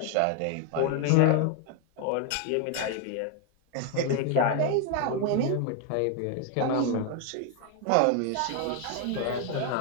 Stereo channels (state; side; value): different; both; correlation 0.00